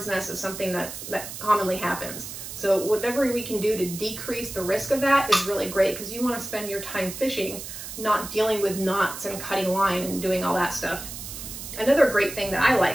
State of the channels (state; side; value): noise; right; hiss, 10 dB below the sound